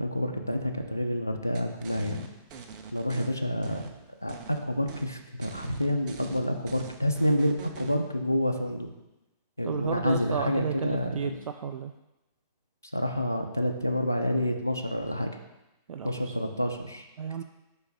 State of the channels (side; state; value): both; inverted; correlation -0.83